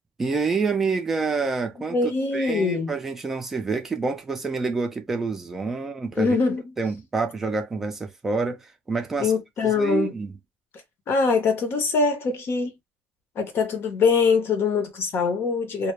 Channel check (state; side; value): normal; both; correlation 0.60